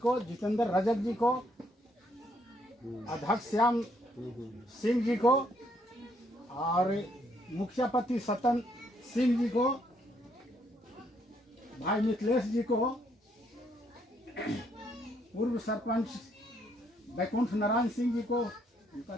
जितेंद्र रजक जी को, अध्यक्ष श्याम सिंह जी को और मुखियापति सतन सिंह जी को, भाई मिथिलेश जी को, पूर्व सरपंच बैकुंठ नारायण सिंह जी को, उनका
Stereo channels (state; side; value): normal; both; correlation 0.71